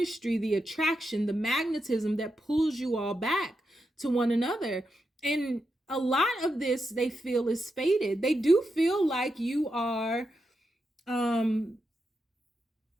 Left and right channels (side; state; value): both; normal; correlation 0.86